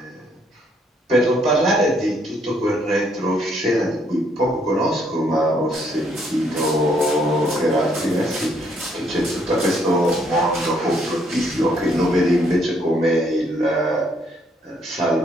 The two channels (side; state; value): both; normal; correlation 0.69